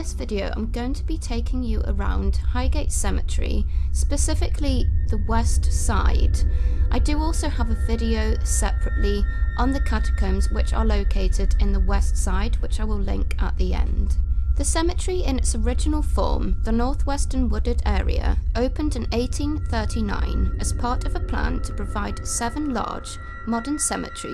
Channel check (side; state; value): both; identical; correlation 1.00